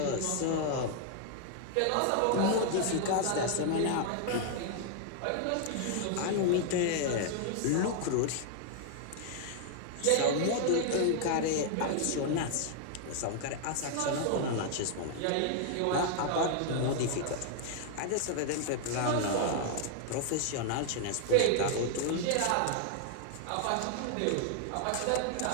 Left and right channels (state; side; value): different; both; correlation 0.00